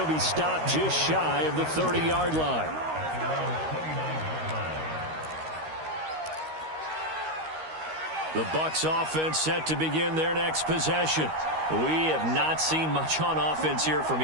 be stopped just shy of the 30-yard line. The Bucs offense set to begin their next possession. We have not seen much on offense here from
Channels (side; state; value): left; late; 13 ms